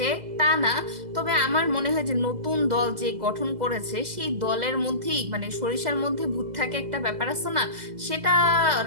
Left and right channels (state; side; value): late; left; 2.0 ms